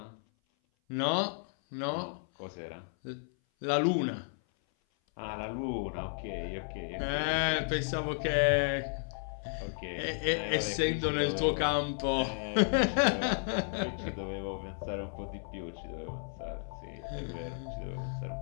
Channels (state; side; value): silent; right; 56 dB below the other